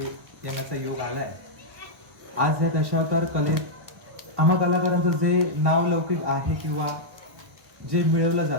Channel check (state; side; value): late; left; 1.1 ms